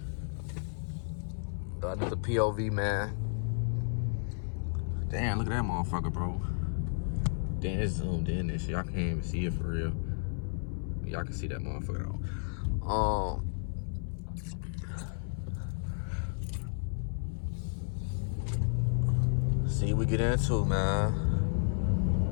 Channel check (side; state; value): right; silent; 56 dB below the other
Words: Got another POV, man. Damn, look at that motherfucker, bro. Damn, it's zoomed in and shit. Y'all can't even see it for real. Y'all can see that motherfucker though. See what we get into, man.